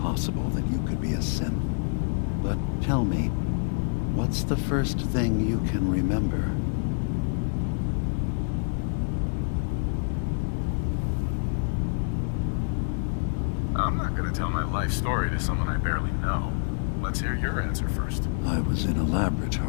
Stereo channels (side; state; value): right; silent; 60 dB below the other